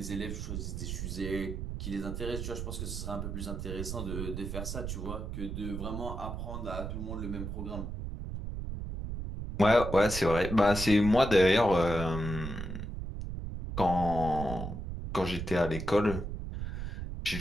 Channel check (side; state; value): right; noise; rumble, 5 dB below the sound